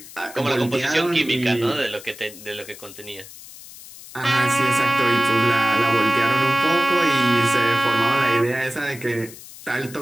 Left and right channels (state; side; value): noise; left; hiss, 17 dB below the sound